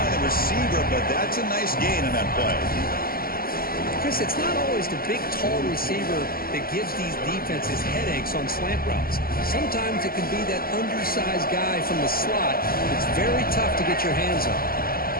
the receiver, but that's a nice gain on that play. Chris, it's not always the big, tall receiver that gives these defenses headaches on slant routes. Sometimes it can be that undersized guy from the slot that's very tough to get your hands on.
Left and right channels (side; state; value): right; late; 0.43 ms